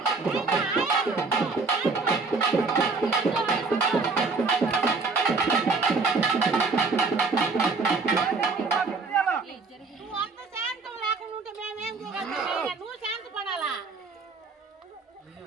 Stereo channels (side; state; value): left; quieter; 4.2 dB